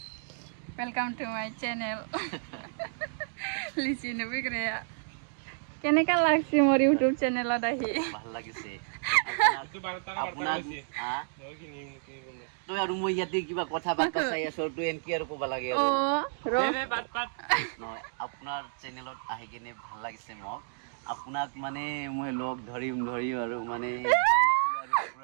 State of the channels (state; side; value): silent; left; digital silence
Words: वेलकाम टू माय चैनल लिसिनो फैग्राया কেনেকা লাগছে মোৰ ইউটিউব চেনেলত আহি ভাল লাগিছে তই আৰু মই ইয়াতে কিবা কথা বাৰ্তা চাই আছো তই এনকি আৰু ক'ব লাগে অ ৰ নহয় আপোনাৰ চেনেলত আহি কিনে ভাল লাগিছে মোক আপোনাক মানে মই লগ ধৰিম আৰু মানে